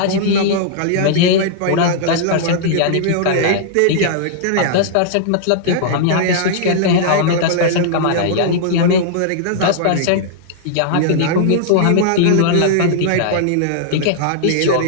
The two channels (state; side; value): different; both; correlation -0.01